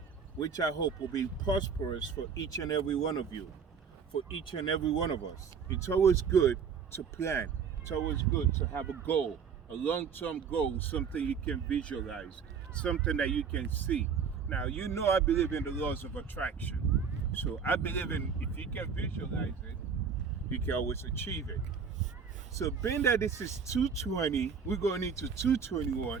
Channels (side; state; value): left; quieter; 6.4 dB